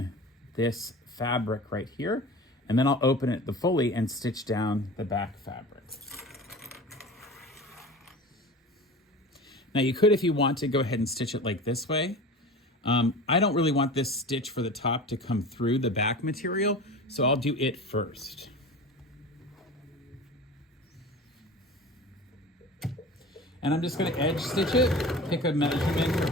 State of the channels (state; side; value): normal; both; correlation 0.35